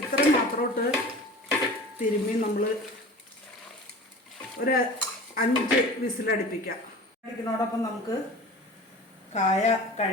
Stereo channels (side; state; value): both; normal; correlation 0.39